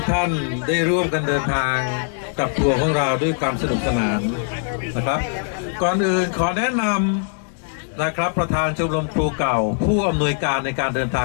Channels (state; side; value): silent; right; 65 dB below the other